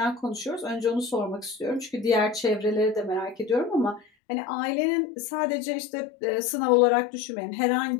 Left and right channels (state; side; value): drops out; right; at 4.0 s